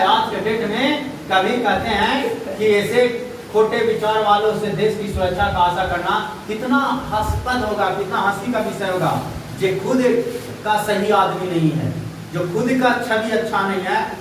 आज के डेट में कभी कहते हैं कि ऐसे खोटे विचार वालों से देश की सुरक्षा का आशा करना कितना हास्यास्पद होगा, कितना हंसी का विषय होगा। जो खुद का सही आदमी नहीं है, जो खुद का छवि अच्छा नहीं है,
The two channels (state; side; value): identical; both; correlation 1.00